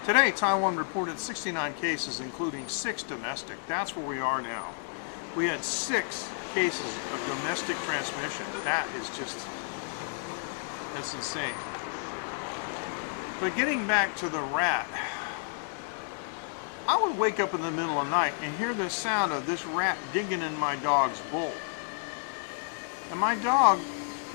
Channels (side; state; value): right; silent; digital silence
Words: Today, Taiwan reported 69 cases, including 6 domestic. That's where we are now. We had 6 cases of domestic transmission. That is just, that's insane. But getting back to the rat, I would wake up in the middle of the night and hear the sound of this rat digging in my dog's bowl. And my dog,